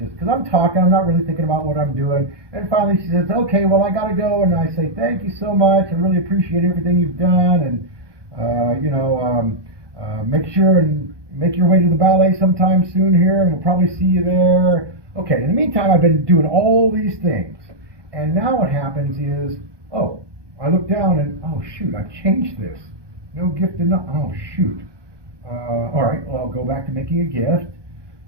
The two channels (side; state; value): left; late; 1.2 ms